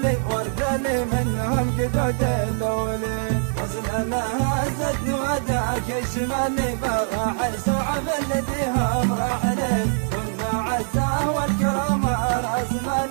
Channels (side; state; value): left; silent; 62 dB below the other